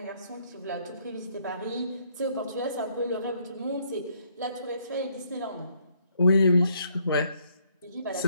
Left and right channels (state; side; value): inverted; both; correlation -0.69